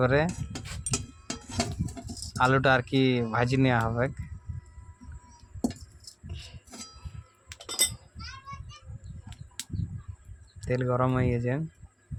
আলুটা আর কি ভাজি নেওয়া হবে। তেল গরম হয়ে গেছে,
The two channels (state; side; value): identical; both; correlation 1.00